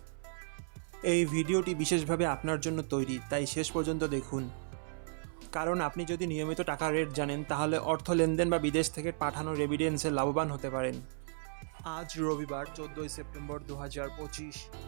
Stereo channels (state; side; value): silent; left; 55 dB below the other